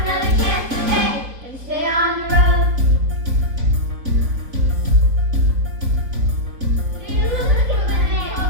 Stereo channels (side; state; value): left; late; 3.8 ms